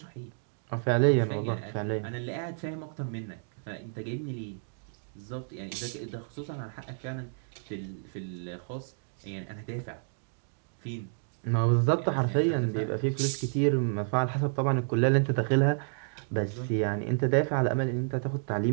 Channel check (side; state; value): left; silent; digital silence